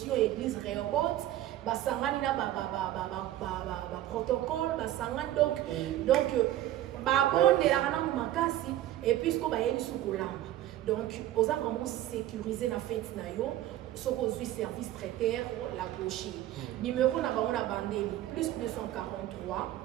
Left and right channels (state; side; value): quieter; left; 13.6 dB